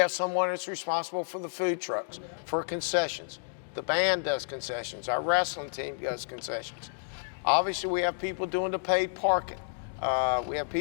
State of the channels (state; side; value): silent; right; digital silence